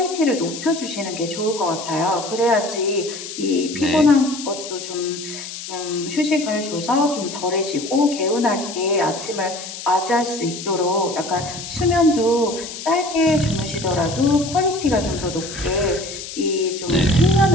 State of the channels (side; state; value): left; noise; hiss, 10 dB below the sound